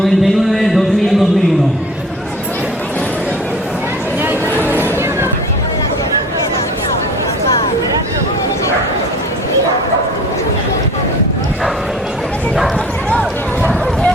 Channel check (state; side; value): normal; both; correlation 0.45